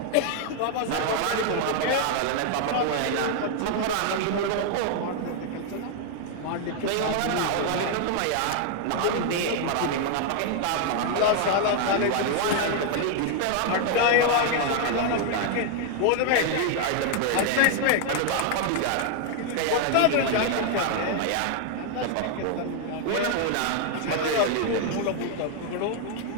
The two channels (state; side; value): different; both; correlation 0.00